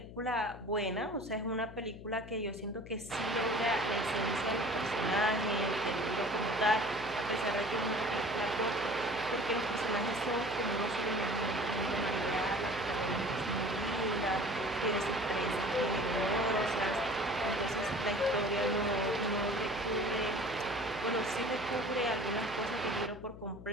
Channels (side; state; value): left; noise; hum, 14 dB below the sound